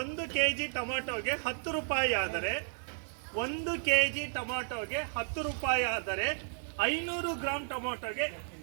1 ಕೆಜಿ ಟೊಮೆಟೊಗೆ 10 ರೂಪಾಯಿ ಆದರೆ 1 ಕೆಜಿ ಟೊಮೆಟೊಗೆ 10 ರೂಪಾಯಿ ಆದರೆ 500 ಗ್ರಾಂ ಟೊಮೆಟೊಗೆ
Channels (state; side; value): silent; left; 56 dB below the other